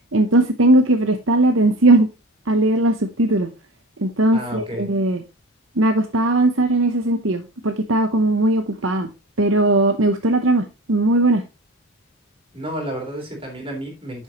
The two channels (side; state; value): both; normal; correlation 0.36